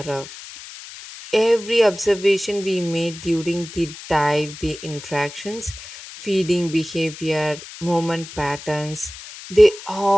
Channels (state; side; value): noise; left; hiss, 14 dB below the sound